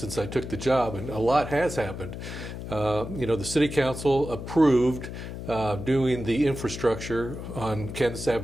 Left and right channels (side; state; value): left; noise; hum, 8 dB below the sound